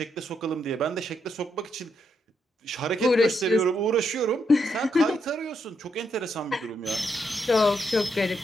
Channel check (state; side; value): normal; both; correlation 0.79